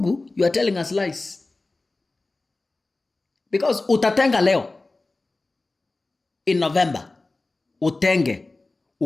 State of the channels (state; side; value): quieter; right; 3.2 dB